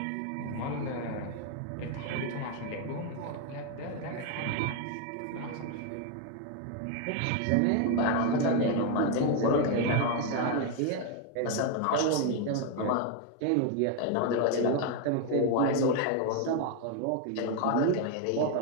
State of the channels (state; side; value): different; both; correlation 0.01